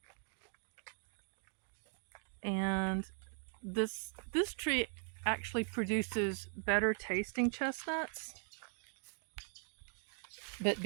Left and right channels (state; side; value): silent; left; 51 dB below the other